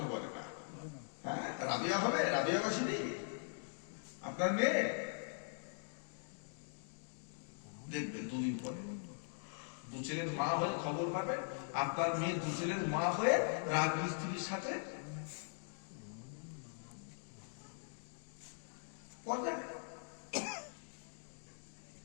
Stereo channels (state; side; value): silent; right; digital silence